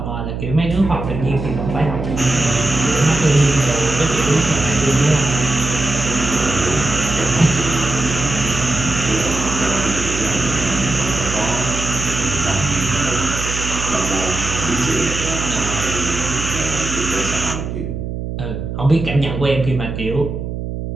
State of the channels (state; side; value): noise; right; hum, 5 dB below the sound